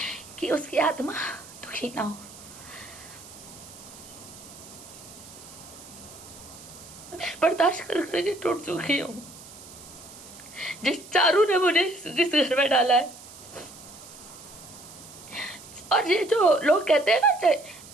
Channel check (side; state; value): right; noise; hiss, 18 dB below the sound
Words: कि उसकी आत्मा दुखी ना हो। बर्दाश्त कर करके टूट चुकी हूँ। जिस चारू ने मुझे इस घर में डाला है, और ये जो लोग कहते हैं ना,